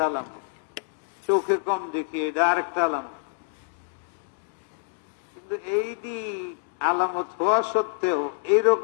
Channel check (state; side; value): silent; right; digital silence